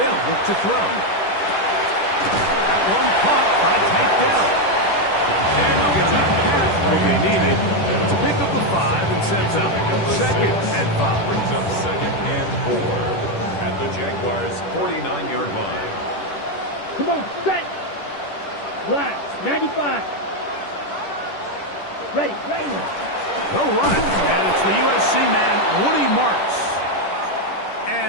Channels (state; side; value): late; right; 10 ms